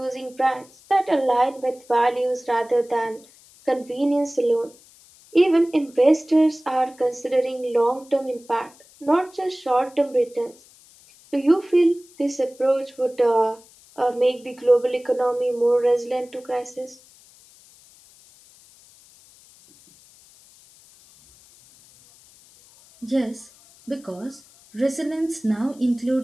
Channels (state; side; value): noise; left; hiss, 26 dB below the sound